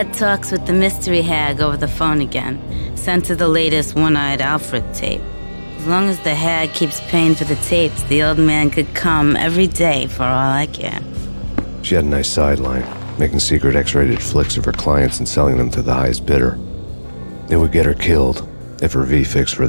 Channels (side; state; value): both; inverted; correlation -1.00